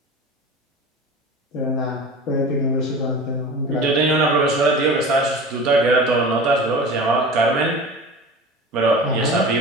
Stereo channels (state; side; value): normal; both; correlation 0.35